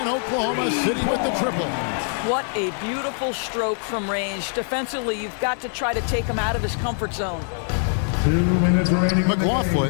Oklahoma City with the triple. What a beautiful stroke from range. Defensively, you've got to try to take him out of his comfort zone. 2 minutes remaining. McLaughlin,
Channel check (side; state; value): right; silent; 56 dB below the other